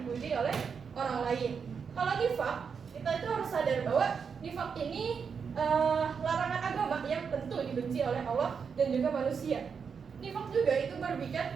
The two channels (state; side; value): quieter; left; 6.2 dB